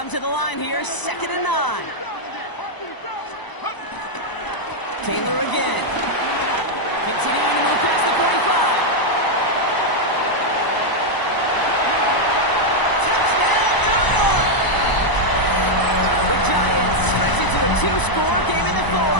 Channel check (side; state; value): right; late; 1.0 ms